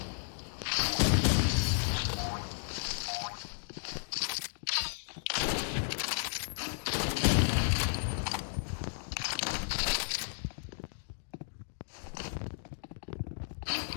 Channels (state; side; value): silent; right; digital silence